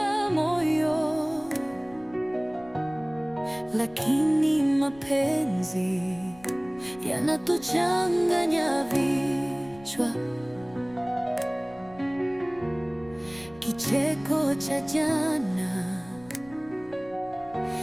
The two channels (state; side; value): noise; left; rumble, 23 dB below the sound